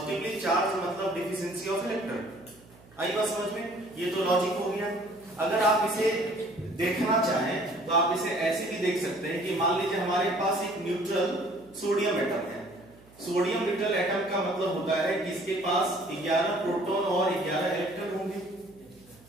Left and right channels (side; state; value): right; noise; hum, 26 dB below the sound